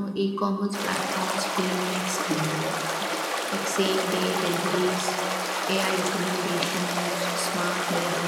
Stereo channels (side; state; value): both; identical; correlation 1.00